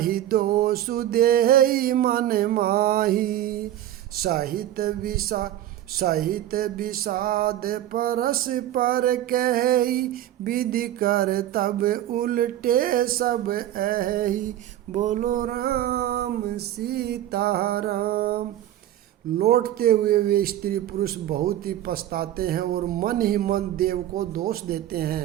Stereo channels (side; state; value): left; quieter; 12.8 dB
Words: दोषु देहि मन माही। सहित विषाद परस पर कही, विधि कर तब उल्टे सब एहि। बोलो राम सीताराम। लौटते हुए वे स्त्री पुरुष बहुत ही पछताते हैं और मन ही मन देव को दोष देते